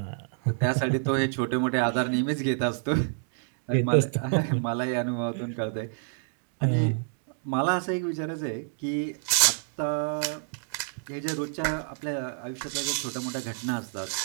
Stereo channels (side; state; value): left; silent; digital silence